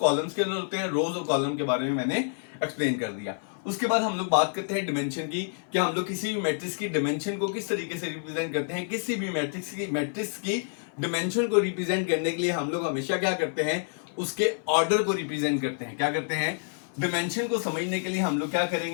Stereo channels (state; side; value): silent; right; 57 dB below the other